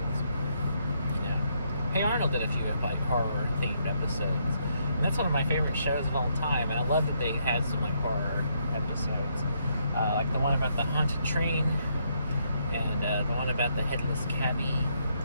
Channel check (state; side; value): inverted; both; correlation -0.74